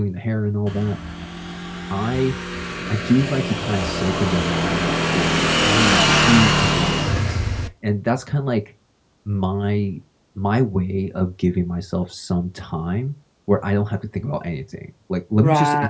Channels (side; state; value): both; identical; correlation 1.00